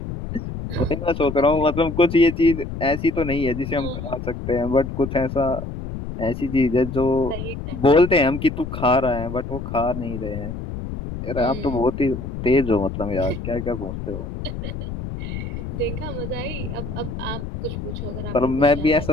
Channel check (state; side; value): noise; left; rumble, 7 dB below the sound